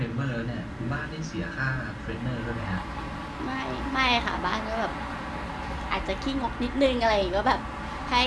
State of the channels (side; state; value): both; identical; correlation 1.00